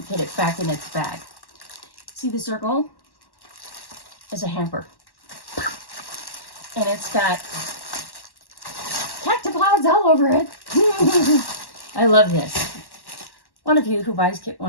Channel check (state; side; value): late; right; 1.1 ms